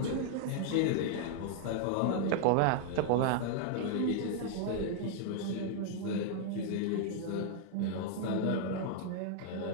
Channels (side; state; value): both; different; correlation 0.00